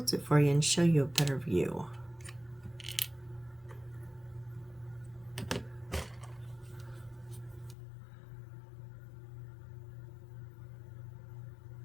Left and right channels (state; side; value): drops out; right; at 7.8 s